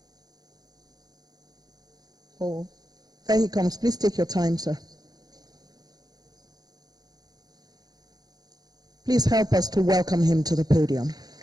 Oh, there he comes. Please take your time, sir. Please help us to welcome him to the podium.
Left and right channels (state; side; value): late; left; 0.19 ms